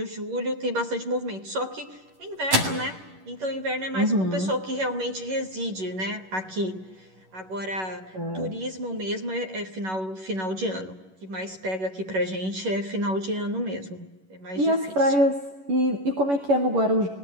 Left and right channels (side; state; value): left; late; 11 ms